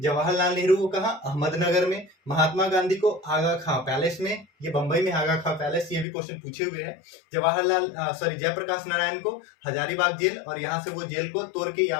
नेहरू को कहां, अहमदनगर में। महात्मा गांधी को आगा खां पैलेस में, ये बंबई में आगा खां पैलेस, ये भी क्वेश्चन पूछे हुए हैं। जयप्रकाश नारायण को हजारीबाग जेल, और यहां से वो जेल को तोड़ के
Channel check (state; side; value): drops out; right; at 6.1 s